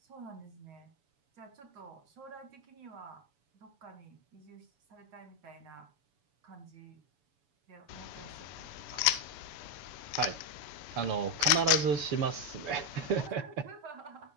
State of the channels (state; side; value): late; left; 7.0 ms